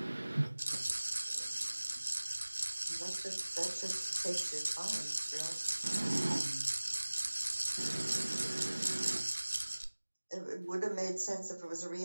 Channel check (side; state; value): both; inverted; correlation -1.00